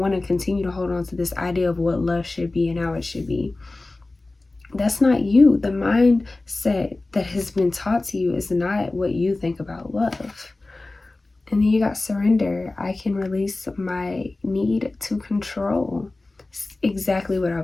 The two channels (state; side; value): quieter; right; 3.1 dB